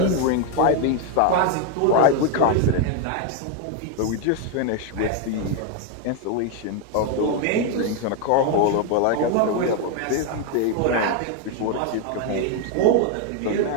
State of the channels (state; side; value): different; both; correlation 0.01